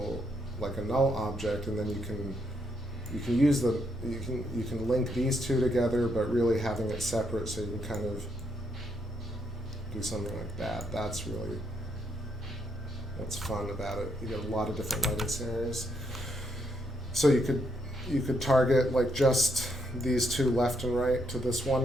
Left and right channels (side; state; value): both; normal; correlation 0.76